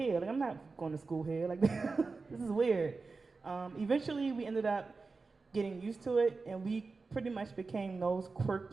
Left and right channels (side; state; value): left; quieter; 4.1 dB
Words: Like I'm not going to school here. Like this is weird. Eventually we ended up getting used to it, and we pretty much became those